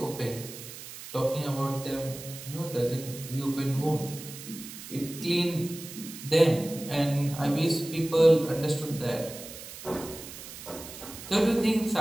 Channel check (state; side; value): noise; right; hiss, 13 dB below the sound